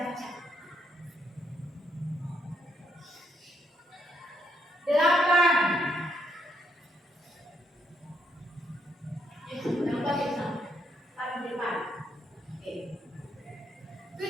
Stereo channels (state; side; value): normal; both; correlation 0.75